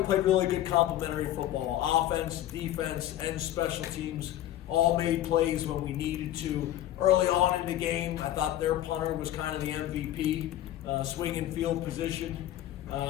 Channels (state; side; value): quieter; right; 13.0 dB